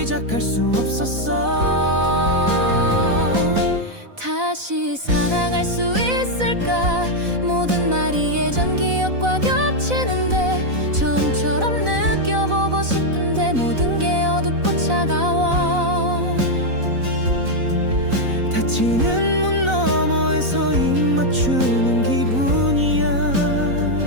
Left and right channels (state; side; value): late; left; 4.0 ms